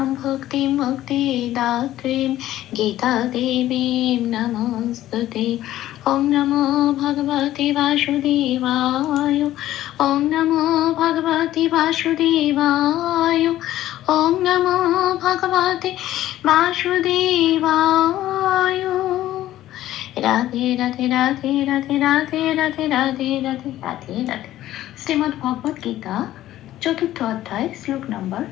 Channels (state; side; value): quieter; right; 14.0 dB